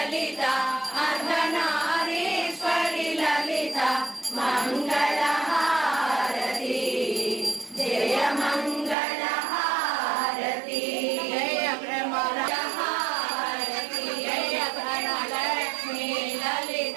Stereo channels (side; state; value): left; drops out; at 9.0 s